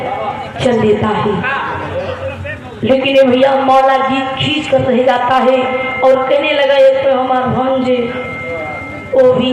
चल देता है। लेकिन ये भैया मौला जी खींच कर रह जाता है और कहने लगा ये तो हमारा भांजे वो भी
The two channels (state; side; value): identical; both; correlation 1.00